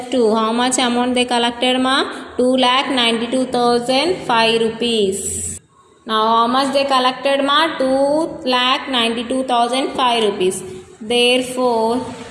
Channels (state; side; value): identical; both; correlation 1.00